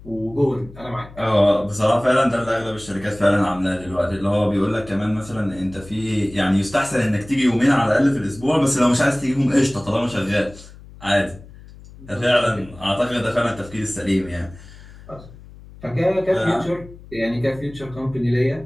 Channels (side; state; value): left; noise; hum, 19 dB below the sound